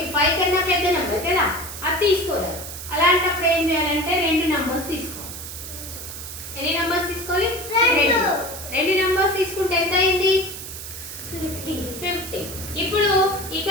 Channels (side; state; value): right; noise; hiss, 10 dB below the sound